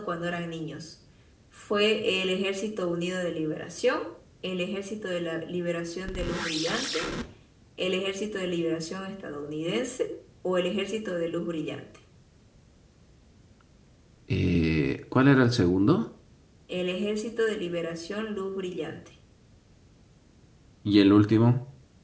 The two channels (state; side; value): identical; both; correlation 1.00